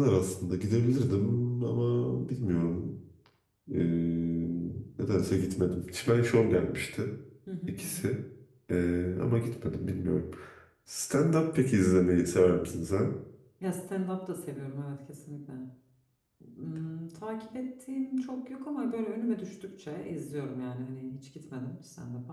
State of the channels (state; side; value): identical; both; correlation 1.00